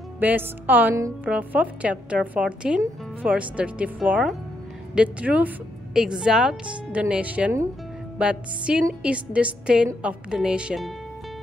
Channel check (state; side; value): normal; both; correlation 0.78